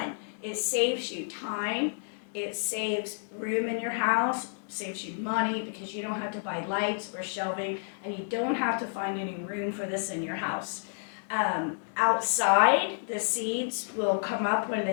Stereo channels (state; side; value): silent; right; digital silence